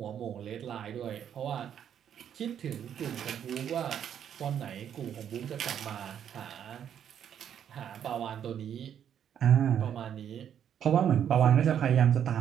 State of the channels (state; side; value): quieter; left; 9.1 dB